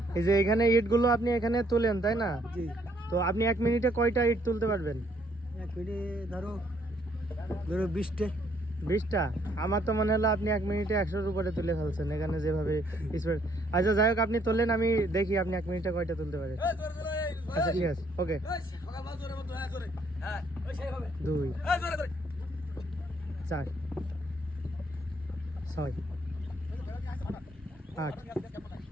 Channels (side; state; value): both; normal; correlation 0.67